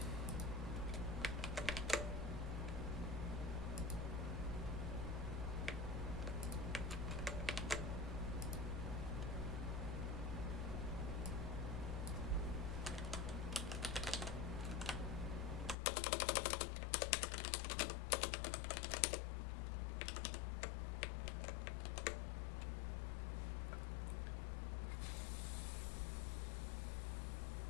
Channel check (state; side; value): drops out; right; at 15.8 s